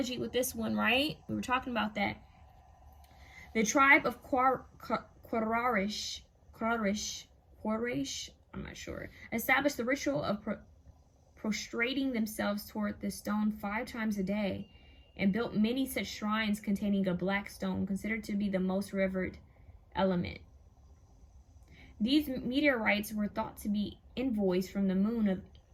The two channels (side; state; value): both; identical; correlation 1.00